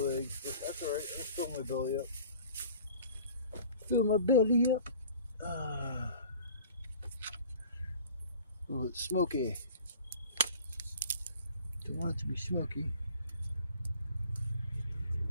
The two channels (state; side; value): inverted; both; correlation -0.47